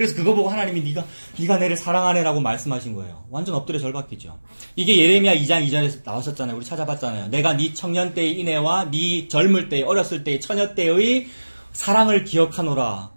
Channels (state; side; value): inverted; both; correlation -1.00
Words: 그거 보고 하나님이 네가 내를 사랑하네라고 말씀하신 거예요. 완전 엎드려 절받기죠. 이게 예레미야 2장 2절에서 나왔었잖아요. 우리 찾아봤잖아요. 내가 네 청년 때의 인애와 네 젊을 때의 어렸을 때의 처녀 때의 사랑을 기억하노라.